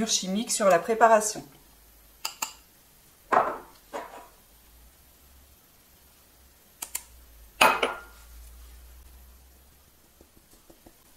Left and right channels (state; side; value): identical; both; correlation 1.00